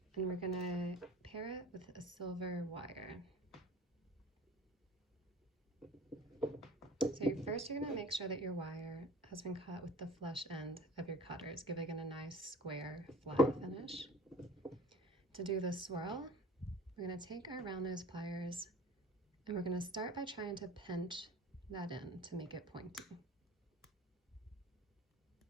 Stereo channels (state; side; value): normal; both; correlation 0.43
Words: and we're going to pair it with a silver wire. So first you're going to make sure that your wire has been cut with the flush end of your cutters, giving it a nice square flat finish. To do the swirl, we're going to take our round nose pliers and we're going to start by trying to pinch that in to make it pointy.